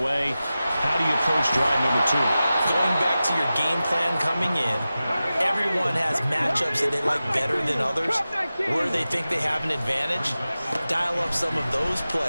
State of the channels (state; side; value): inverted; both; correlation -0.95